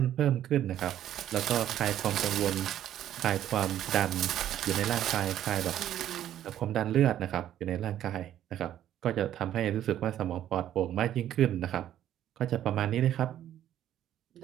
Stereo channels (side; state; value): left; quieter; 11.5 dB